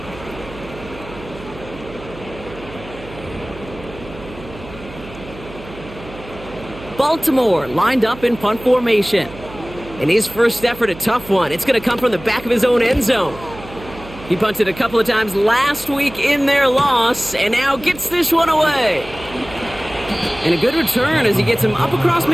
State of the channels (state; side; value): noise; right; hum, 16 dB below the sound